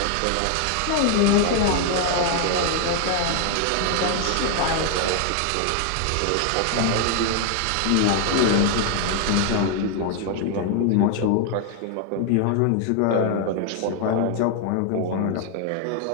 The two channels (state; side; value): different; both; correlation 0.00